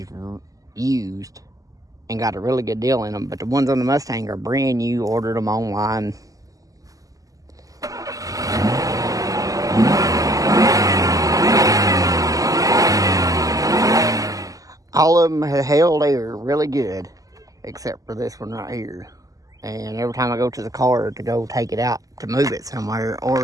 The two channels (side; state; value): left; late; 0.17 ms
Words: used and got a really good deal in them, but the ones on the Mustang are brand new, ordered them online. All of them have held air really good, except for this one right here. And every time I go to the car to go take it out to move it somewhere or